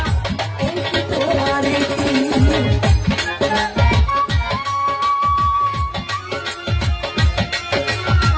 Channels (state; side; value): identical; both; correlation 1.00